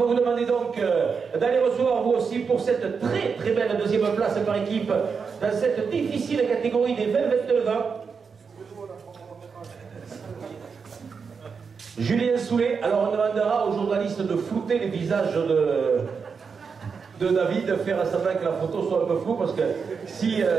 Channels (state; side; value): quieter; left; 5.6 dB